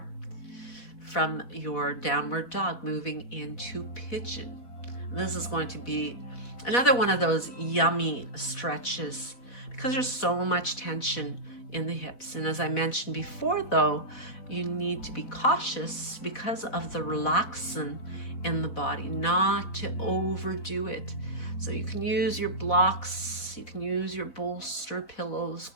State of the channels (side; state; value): right; late; 4.1 ms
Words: from your downward dog, moving into pigeon. This is going to be another one of those yummy stretches because there's so much tension in the hips. And as I mentioned before, though, you need to be cautious because of the relaxin in the body, not to overdo it. So you can use your blocks, you can use your bolster, pillows,